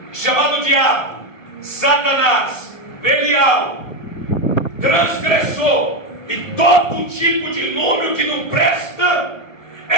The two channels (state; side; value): late; right; 1.1 ms